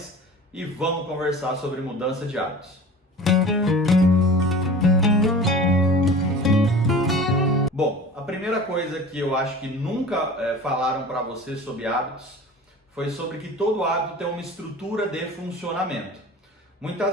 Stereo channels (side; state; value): both; normal; correlation 0.39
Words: e vamos conversar sobre mudança de hábitos. Bom, a primeira coisa que eu acho que nunca falaram para você sobre hábitos foi sobre que todo hábito tem uma estrutura de funcionamento.